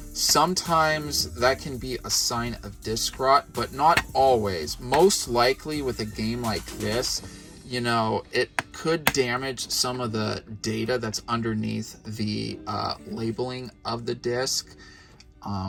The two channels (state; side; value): identical; both; correlation 1.00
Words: sometimes that can be a sign of disc rot, but not always. Most likely with a game like this, you know, it could damage some of the data that's underneath the labeling of the disc.